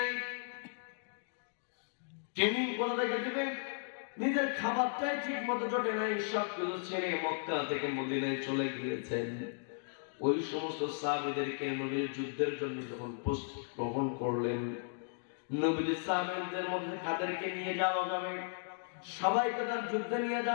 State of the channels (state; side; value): silent; right; digital silence